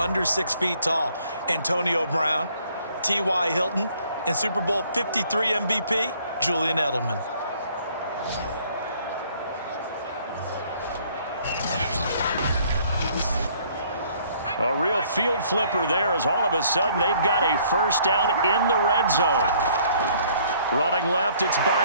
6 feet tall? Antonio Brown, T.Y. Hilton, and Super Bowl 53 MVP, Julian Edelman. A real field flipper there as all of a sudden they've got a first down in the red zone. Running left, it's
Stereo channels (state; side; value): inverted; both; correlation -0.61